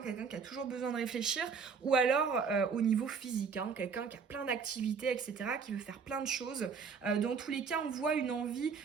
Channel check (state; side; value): quieter; left; 5.8 dB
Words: quelqu'un qui a toujours besoin de réfléchir, ou alors au niveau physique, hein, quelqu'un qui a plein d'activités, etc., qui veut faire plein de choses. Dans tous les cas, on voit une envie